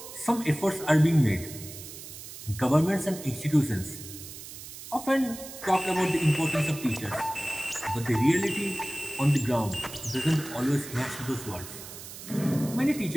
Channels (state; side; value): noise; right; hiss, 13 dB below the sound